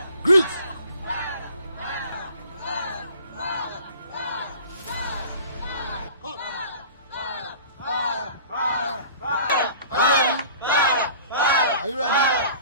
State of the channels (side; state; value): both; inverted; correlation -0.45